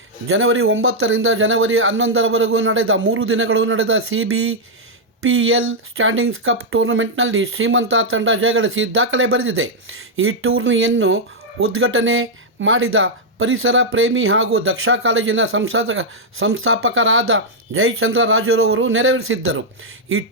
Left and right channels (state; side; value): normal; both; correlation -0.04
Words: ಜನವರಿ 9ರಿಂದ ಜನವರಿ 11ರವರೆಗೂ ನಡೆದ 3 ದಿನಗಳು ನಡೆದ CBPL ಸ್ಟ್ಯಾಂಡಿಂಗ್ಸ್ ಕಪ್ ಟೂರ್ನಮೆಂಟ್ನಲ್ಲಿ ಶ್ರೀಮಂತ ತಂಡ ಜಯಗಳಿಸಿ ದಾಖಲೆ ಬರೆದಿದೆ. ಈ ಟೂರ್ನಿಯನ್ನು ಉದ್ಘಾಟನೆ ಮಾಡಿದ ಪರಿಸರ ಪ್ರೇಮಿ ಹಾಗೂ ದಕ್ಷ ಕಾಲೇಜಿನ ಸಂಸ್ಥಾಪಕರಾದ ಜಯಚಂದ್ರ ರಾಜುರವರು ನೆರವೇರಿಸಿದ್ದರು. ಈ